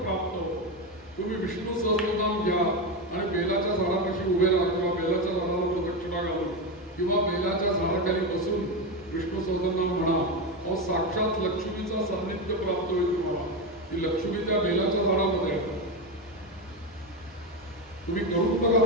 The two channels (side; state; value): both; normal; correlation 0.14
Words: प्राप्त होतं. तुम्ही विष्णू सहस्रनाम घ्या आणि बेलाच्या झाडापाशी उभे राहा किंवा बेलाच्या झाडाला प्रदक्षिणा घालून किंवा बेलाच्या झाडाखाली बसून विष्णू सहस्रनाम म्हणा. अहो साक्षात लक्ष्मीचा सान्निध्य प्राप्त होईल तुम्हाला. ती लक्ष्मी त्या बेलाच्या झाडामध्ये आहे. तुम्ही करून बघा